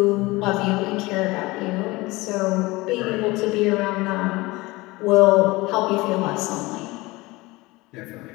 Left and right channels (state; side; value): quieter; right; 21.7 dB